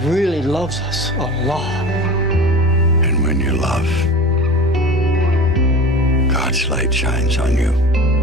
really loves us a lot. And when you love, God's light shines on you.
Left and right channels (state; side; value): normal; both; correlation 0.35